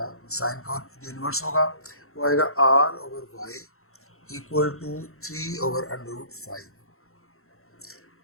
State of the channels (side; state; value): right; late; 0.63 ms